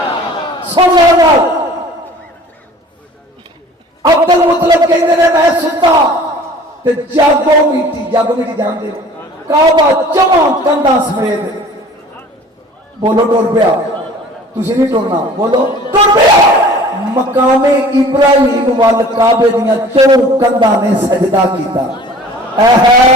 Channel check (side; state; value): both; normal; correlation 0.47